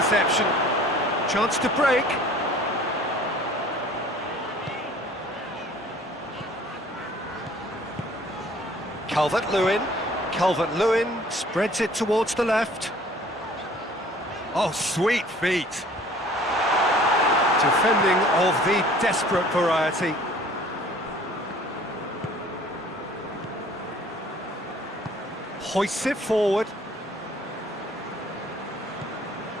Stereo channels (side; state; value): both; normal; correlation 0.52